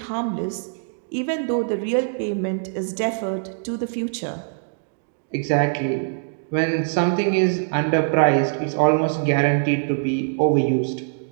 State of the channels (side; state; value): left; silent; digital silence